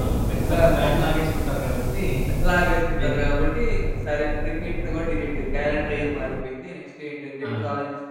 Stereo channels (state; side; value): identical; both; correlation 1.00